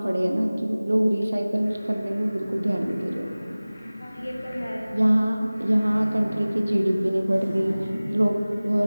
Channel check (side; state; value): both; inverted; correlation -0.99